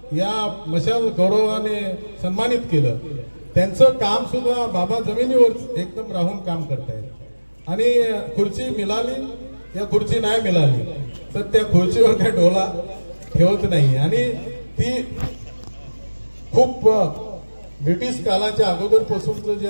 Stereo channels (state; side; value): inverted; both; correlation -1.00